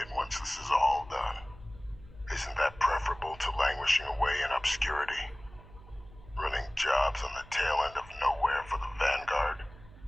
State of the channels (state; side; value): noise; right; hum, 20 dB below the sound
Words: once this is all done. Isn't that preferable to languishing away in obscurity? Running jobs on the tail end of nowhere for the Vanguard?